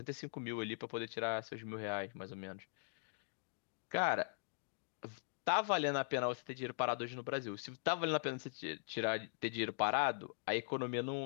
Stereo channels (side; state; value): right; silent; digital silence